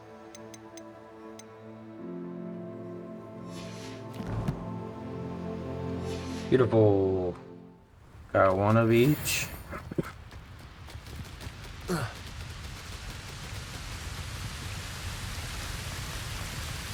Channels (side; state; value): both; identical; correlation 1.00